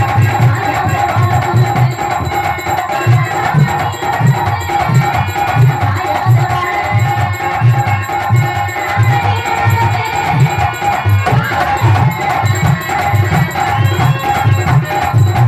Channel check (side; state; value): both; identical; correlation 1.00